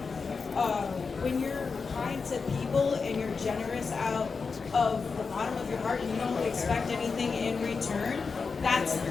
when you're kind to people and you're generous out of the bottom of your heart and you don't expect anything in return, that's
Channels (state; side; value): quieter; right; 4.9 dB